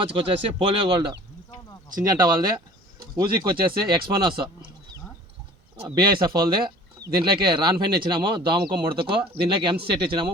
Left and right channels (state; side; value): normal; both; correlation 0.46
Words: వచ్చేసి పోలియో గోల్డ్ సింజంట వాళ్ళది, ఊజిక్కి వచ్చేసి ఎక్స్పోనస్ బిఐఎస్ఎఫ్ వాళ్ళది. దీంట్లోకి రాన్ఫైన్ ఇచ్చినాము, దోమకు ముడతకు. దీంట్లోకి ఎంసీ సెట్ ఇచ్చినాము,